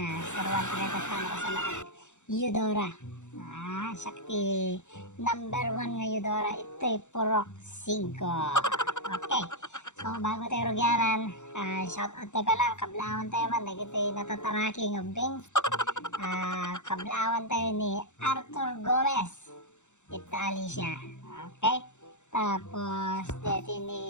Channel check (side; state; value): right; late; 0.84 ms